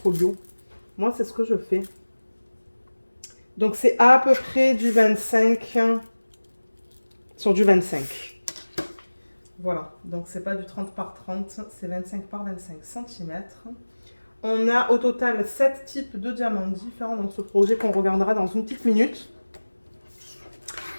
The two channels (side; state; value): both; inverted; correlation -1.00